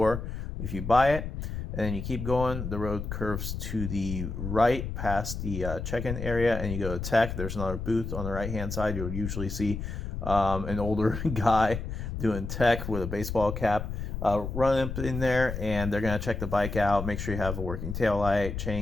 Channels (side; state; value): left; noise; rumble, 5 dB below the sound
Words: if you buy it. And then you keep going. The road curves to the right past the check-in area, and you go to tech. There's another booth on the right-hand side. You'll usually see an older guy doing tech with a baseball cap. Run up in there, and they're going to check the bike out, make sure you have a working tail light,